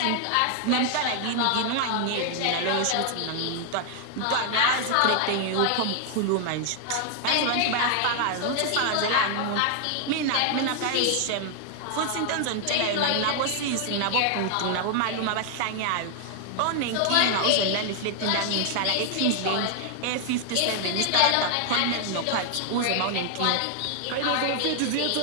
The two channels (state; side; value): different; both; correlation 0.00